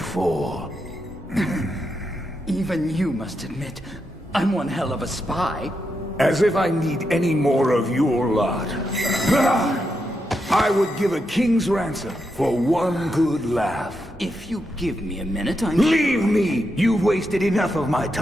for? Even you must admit, I'm one hell of a spy. As if I need any more of your lot. I would give a king's ransom for one good laugh. If you give me a minute, Leave me! You've wasted enough of my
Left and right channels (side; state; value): both; normal; correlation 0.84